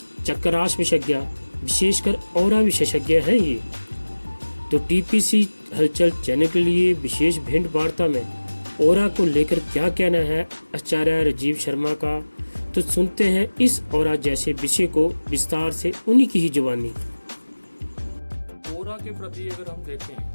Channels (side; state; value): both; inverted; correlation -1.00